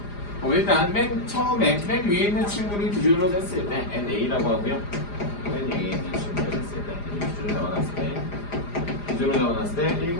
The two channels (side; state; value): right; late; 4.9 ms